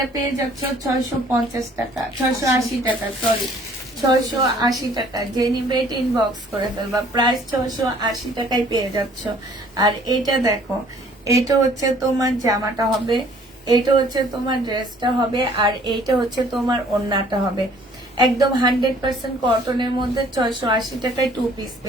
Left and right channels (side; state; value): both; normal; correlation 0.57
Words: পেয়ে যাচ্ছ 650 টাকা, 680 টাকা, সরি 680 টাকা। যে নিবে এটা ইনবক্স করে ফেলবা। প্রাইস 680 টাকায় পেয়ে যাচ্ছ। আর এটা দেখো, এটা হচ্ছে তোমার জামাটা হবে, এটা হচ্ছে তোমার ড্রেসটা হবে, আর এইটা হচ্ছে তোমার ওড়নাটা হবে। একদম 100% কটনের মধ্যে 680 টাকায় 2 পিস